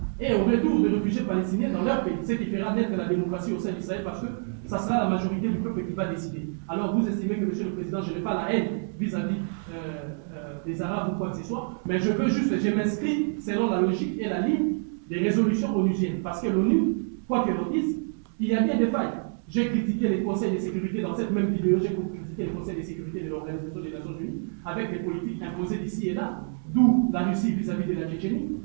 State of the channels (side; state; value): left; silent; 60 dB below the other